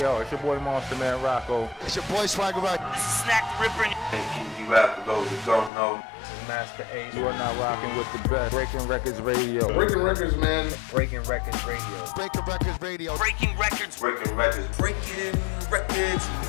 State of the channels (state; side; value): drops out; right; at 5.7 s